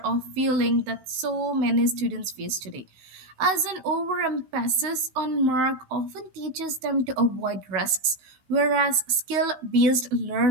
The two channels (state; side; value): late; left; 15 ms